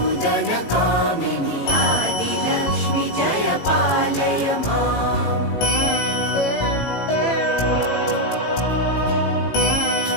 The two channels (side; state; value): right; late; 18 ms